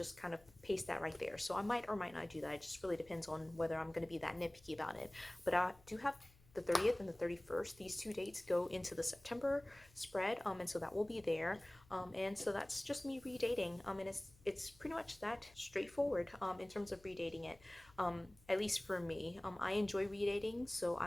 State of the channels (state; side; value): noise; left; hum, 27 dB below the sound